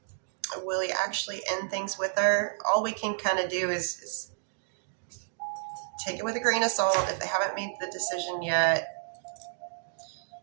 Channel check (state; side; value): silent; left; digital silence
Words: will he actually end things with her? All we can kind of do is take it with a grain of salt if they haven't made the decision yet.